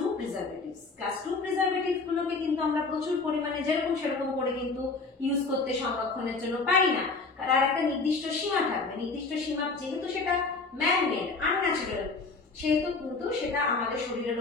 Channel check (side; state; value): right; quieter; 4.0 dB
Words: preservatives. Class 2 preservatives গুলোকে কিন্তু আমরা প্রচুর পরিমাণে যেরকম সেরকম করে কিন্তু ইউজ করতে সংরক্ষণের জন্য পারি না। আর একটা নির্দিষ্ট সীমা থাকবে, নির্দিষ্ট সীমা, যেহেতু সেটা ম্যান মেড, আনন্যাচারাল, সেহেতু কিন্তু সেটা আমাদের শরীরের